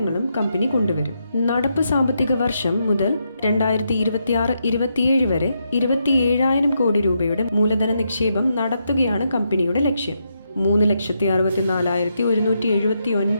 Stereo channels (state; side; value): inverted; both; correlation -0.81